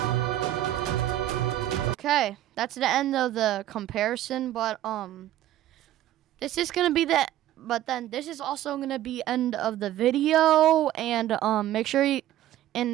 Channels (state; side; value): quieter; left; 13.4 dB